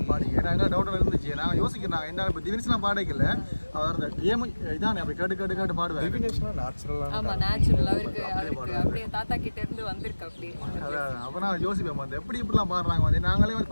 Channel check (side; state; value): both; inverted; correlation -1.00